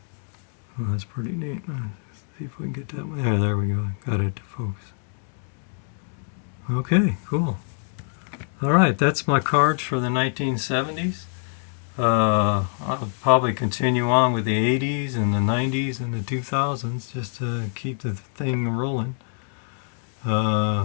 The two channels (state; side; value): silent; right; 62 dB below the other